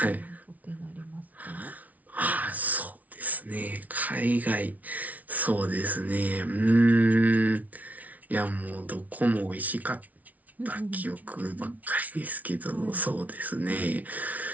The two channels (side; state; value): left; late; 0.073 ms